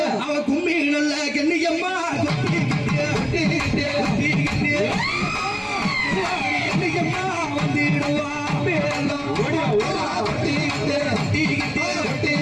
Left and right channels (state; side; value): identical; both; correlation 1.00